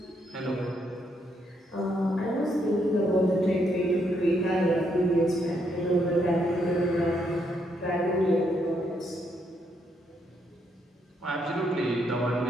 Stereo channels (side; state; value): both; normal; correlation 0.75